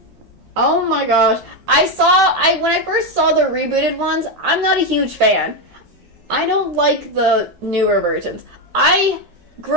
Oh my gosh. When I first saw the rebooted ones, I'm not a huge fan. I don't like the newer versions. I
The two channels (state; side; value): late; left; 12 ms